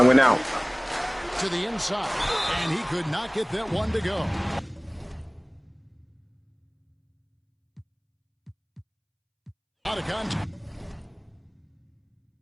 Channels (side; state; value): both; identical; correlation 1.00